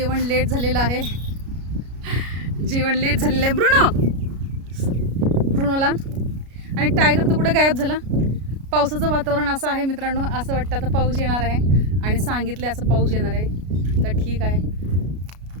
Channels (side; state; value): left; late; 33 ms